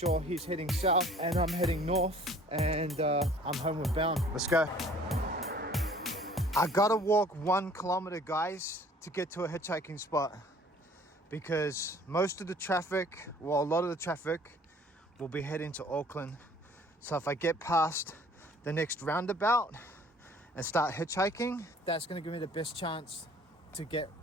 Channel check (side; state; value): both; normal; correlation 0.53